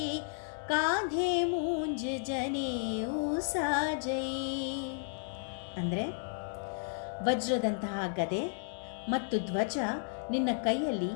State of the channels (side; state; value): right; silent; digital silence